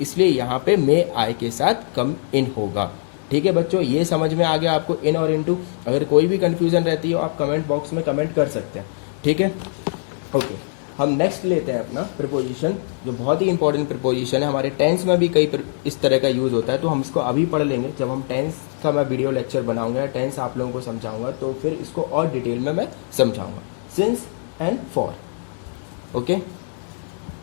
यहाँ पे मे आई के साथ कम इन होगा, ठीक है बच्चों। ये समझ में आ गया आपको, इन और इनटू। अगर कोई भी कंफ्यूजन रहती हो, आप कमेंट बॉक्स में कमेंट कर सकते हैं, ठीक है। ओके, हम नेक्स्ट लेते हैं अपना प्रिपोजिशन, जो बहुत ही इंपॉर्टेंट प्रिपोजिशन है। हमारे टेंस में भी कई इस तरह का यूज होता है, तो हम इसको अभी पढ़ लेंगे। जब हम टेंस का मैं वीडियो लेक्चर बनाऊंगा, टेंस आप लोगों को समझाऊंगा, तो फिर इसको और डिटेल में मैं समझाऊंगा। Since and for, okay.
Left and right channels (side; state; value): right; silent; digital silence